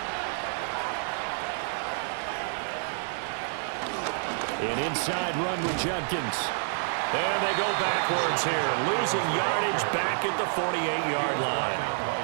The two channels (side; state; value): left; silent; digital silence